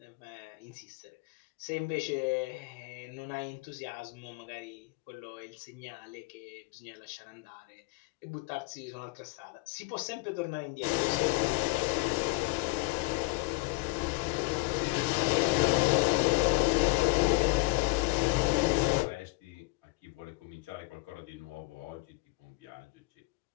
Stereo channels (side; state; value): right; quieter; 24.6 dB